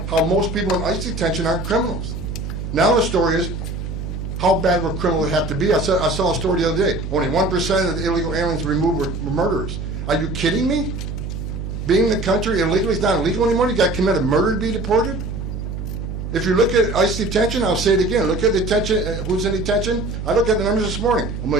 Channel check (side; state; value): right; noise; hum, 6 dB below the sound